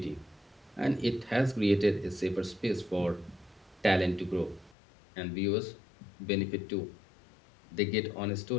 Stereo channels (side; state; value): right; drops out; at 4.8 s